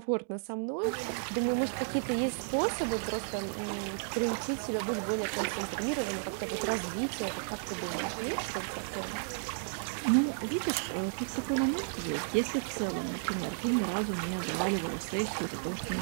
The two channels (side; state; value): left; silent; digital silence